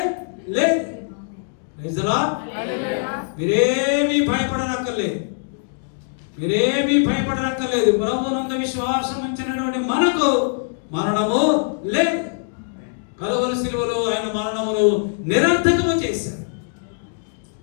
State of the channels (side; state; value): right; silent; digital silence